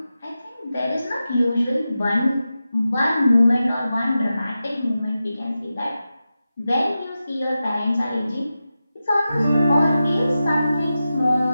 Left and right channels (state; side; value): inverted; both; correlation -0.92